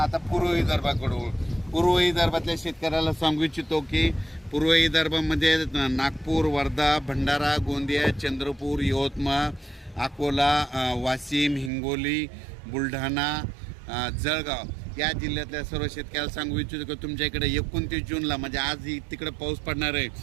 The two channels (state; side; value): drops out; left; at 11.7 s